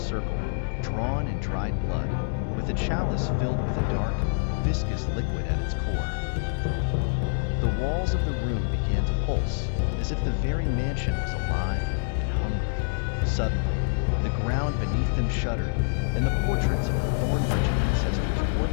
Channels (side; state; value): right; silent; 61 dB below the other